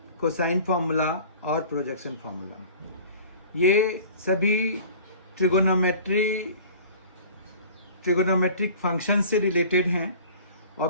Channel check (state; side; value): inverted; both; correlation -0.44